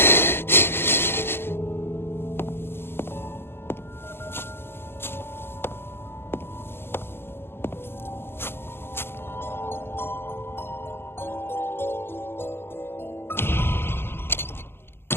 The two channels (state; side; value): late; right; 0.11 ms